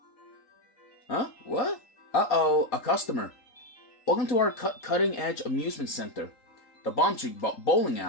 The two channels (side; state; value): right; late; 3.8 ms